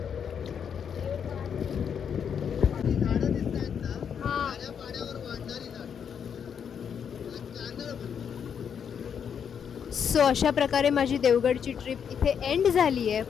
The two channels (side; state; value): right; quieter; 7.6 dB